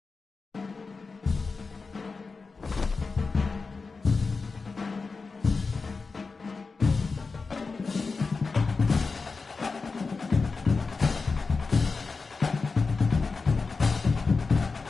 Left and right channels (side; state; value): right; quieter; 4.3 dB